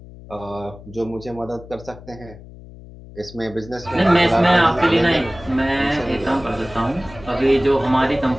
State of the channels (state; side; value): noise; left; hum, 18 dB below the sound